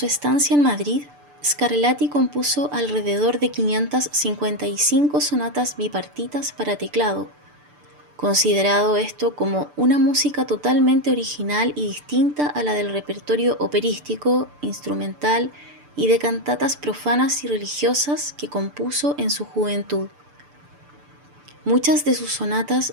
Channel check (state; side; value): late; left; 6.8 ms